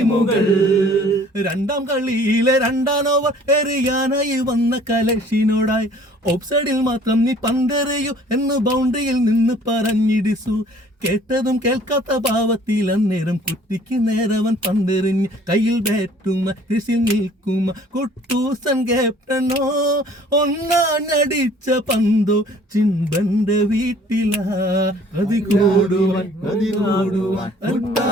രണ്ടാം കളിയിലെ 2ാം ഓവർ എറിയാനായി വന്ന കലശിനോടായി ഓഫ്സൈഡിൽ മാത്രം നീ പന്തെറിയൂ എന്ന് ബൗണ്ടറിയിൽ നിന്ന് പറഞ്ഞിടിച്ചു. കേട്ടതും കേൾക്കാത്ത ഭാവത്തിൽ അന്നേരം കുറ്റിക്ക് നേരവൻ പന്തെറിഞ്ഞ് കയ്യിൽ ബാറ്റുമ കൃഷിയിൽ നിൽക്കുമ കുട്ടൂസൻ ക്യാപ്റ്റനോ ഒന്നാഞ്ഞടിച്ച പന്തോ ചിമ്പന്റെ വീട്ടിലാ. കതി കൂടുവാൻ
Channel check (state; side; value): normal; both; correlation 0.54